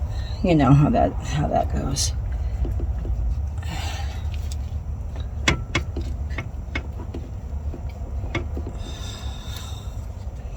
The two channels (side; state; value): both; identical; correlation 1.00